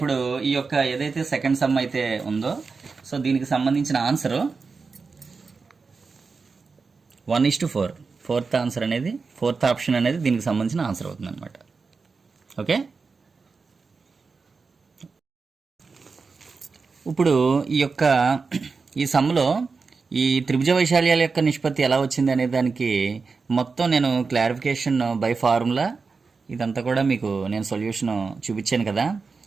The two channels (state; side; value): quieter; left; 4.6 dB